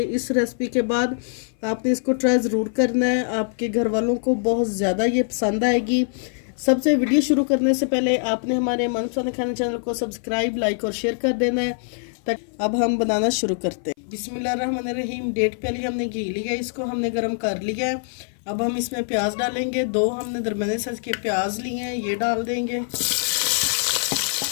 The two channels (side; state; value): right; silent; 57 dB below the other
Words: इस रेसिपी के बाद आपने इसको ट्राई ज़रूर करना है। आपके घर वालों को बहुत ज़्यादा ये पसंद आएगी। सबसे वीडियो शुरू करने से पहले आपने हमारे मनपसंद खाने चैनल को सब्सक्राइब, लाइक और शेयर कर देना है। तक अब हम बनाना शुरू करते हैं। बिस्मिल्लाहिर्रहमानिर्रहीम। डेढ़ प्याली हमने घी लिया, इसको हमने गर्म कर लिया है। अब हम इसमें प्याज डालेंगे। 2 हमने दरमियाने साइज के प्याज लिए हैं, ये डाल देंगे।